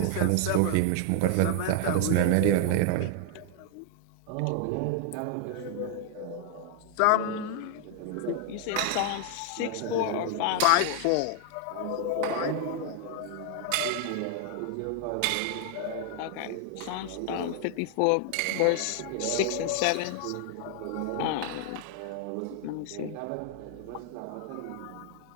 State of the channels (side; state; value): both; different; correlation 0.00